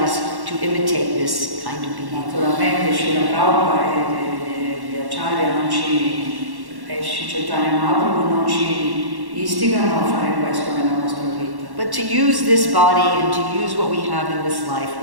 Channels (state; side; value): late; left; 1.1 ms